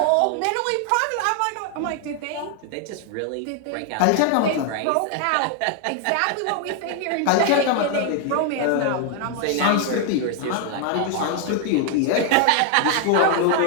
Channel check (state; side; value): different; both; correlation 0.00